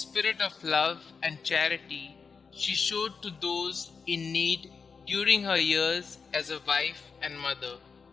of love and charity she showed to those in need during her years as a wife and mother.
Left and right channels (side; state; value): right; quieter; 5.4 dB